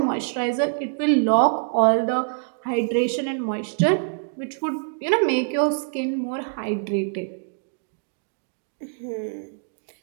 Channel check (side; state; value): left; silent; digital silence